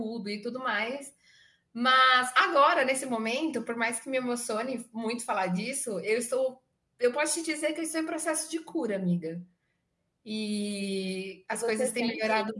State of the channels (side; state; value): both; identical; correlation 1.00